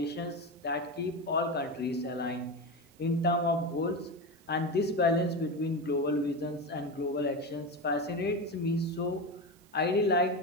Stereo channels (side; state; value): both; normal; correlation 0.19